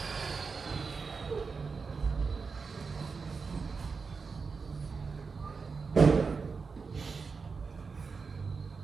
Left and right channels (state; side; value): quieter; left; 4.9 dB